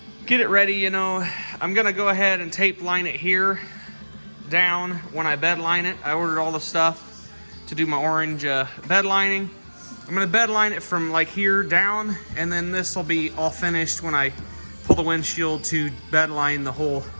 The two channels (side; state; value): both; inverted; correlation -1.00